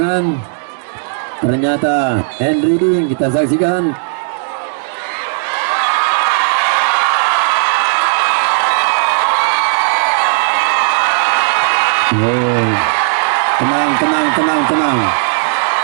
Ternyata Henry kita saksikan. Oh, tenang.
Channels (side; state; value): left; silent; digital silence